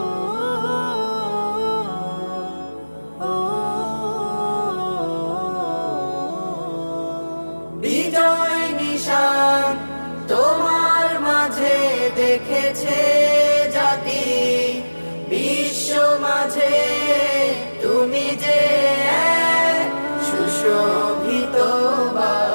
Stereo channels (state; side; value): inverted; both; correlation -1.00